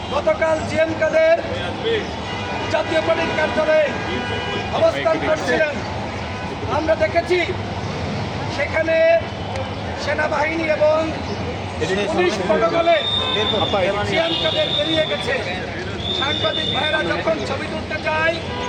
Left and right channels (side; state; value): both; identical; correlation 1.00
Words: গতকাল জিএম কাদের জাতীয় পার্টির কার্যালয়ে অবস্থান করছিলেন, আমরা দেখেছি সেখানে সেনাবাহিনী এবং পুলিশ প্রটোকলে জিএম কাদের বেরিয়ে গেছে। সাংবাদিক ভাইয়েরা যখন ছবি তুলতে যায়,